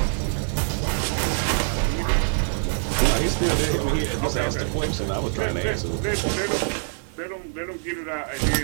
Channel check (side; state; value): left; silent; 62 dB below the other